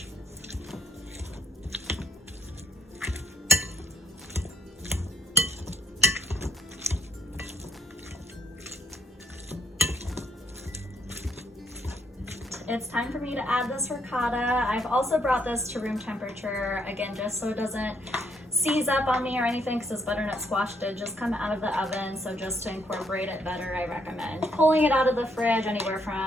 It's time for me to add this ricotta. I've also brought this to room temperature, again, just so it doesn't seize up on me or anything because this butternut squash did just come out of the oven. So just to incorporate it better, I recommend pulling it out of the fridge anywhere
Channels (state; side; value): normal; both; correlation 0.70